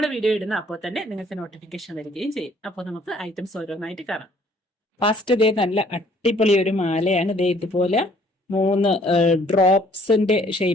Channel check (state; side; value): normal; both; correlation 0.60